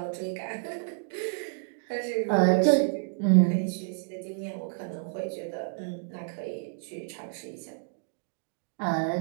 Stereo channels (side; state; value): left; silent; digital silence